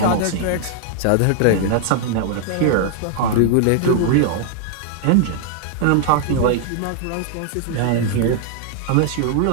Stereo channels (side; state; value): both; different; correlation 0.00